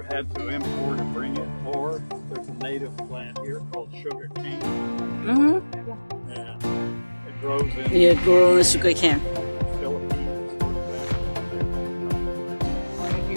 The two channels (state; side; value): inverted; both; correlation -1.00